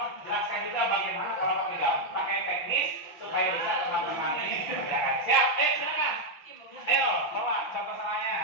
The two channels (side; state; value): right; late; 5.8 ms